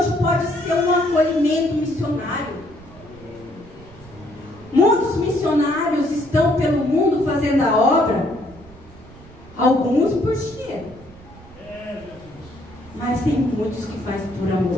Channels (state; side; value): noise; right; rumble, 21 dB below the sound